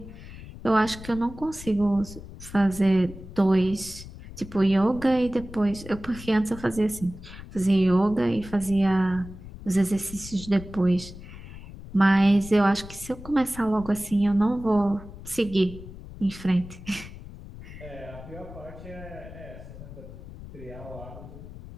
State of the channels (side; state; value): left; noise; rumble, 15 dB below the sound